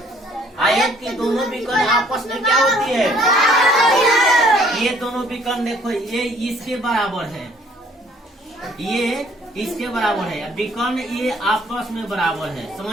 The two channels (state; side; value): normal; both; correlation 0.60